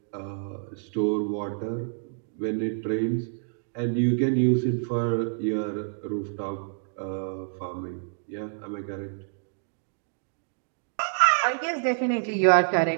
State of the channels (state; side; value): silent; left; digital silence